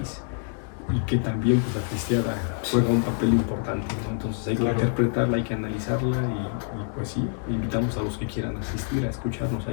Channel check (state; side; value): silent; right; 61 dB below the other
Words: y que también pues, la cristiada juega un papel importante, ¿no? Entonces hay que interpretarla, hay que analizarla y pues sí, invitamos a los que quieran asistir a escucharnos